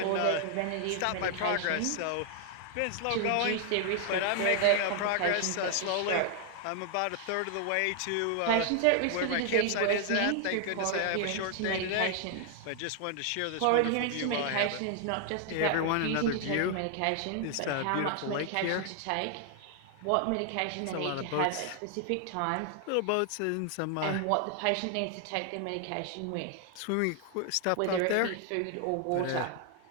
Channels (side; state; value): both; different; correlation 0.00